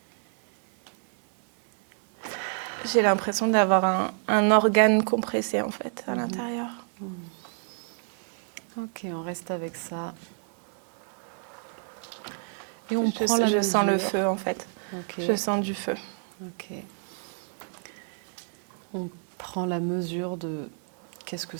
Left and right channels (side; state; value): left; silent; 59 dB below the other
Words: J'ai l'impression d'avoir un organe compressé, en fait, à l'intérieur. Ok, on reste avec ça. Et on prend la Je mesure. sens le feu, en fait. Ok. Je sens du feu. Ok. On prend la mesure de qu'est-ce que